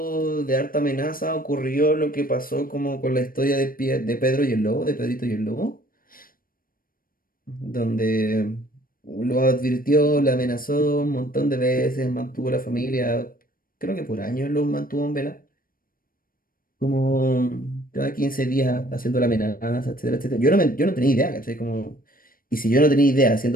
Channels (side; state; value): right; late; 0.41 ms